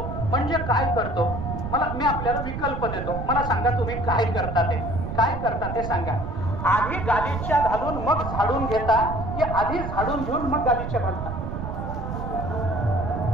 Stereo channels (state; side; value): noise; right; rumble, 5 dB below the sound